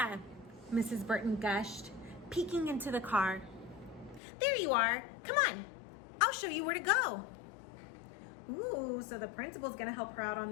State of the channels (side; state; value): right; drops out; at 4.2 s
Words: Mrs. Burton gushed, peeking into the car. There you are. Come on. I'll show you where to go. Ooh, so the principal's gonna help her out on